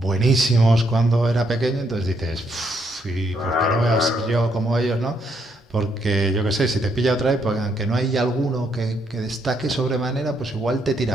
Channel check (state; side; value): normal; both; correlation 0.75